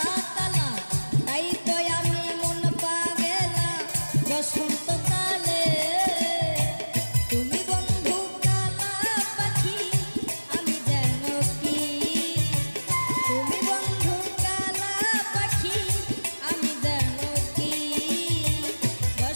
কালা, তাই তো আমি মন পাগলা বসন্তকালে। তুমি বন্ধু কালা পাখি আমি জানো কি, তুমি বন্ধু কালা পাখি আমি জানো কি,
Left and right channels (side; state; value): both; inverted; correlation -1.00